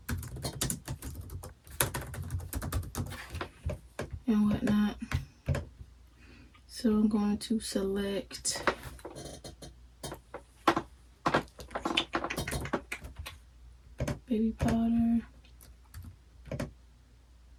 And whatnot. So I'm going to select baby powder,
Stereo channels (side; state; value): both; identical; correlation 1.00